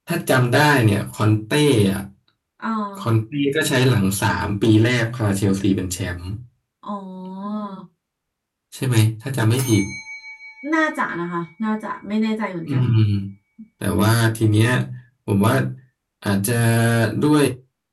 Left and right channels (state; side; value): identical; both; correlation 1.00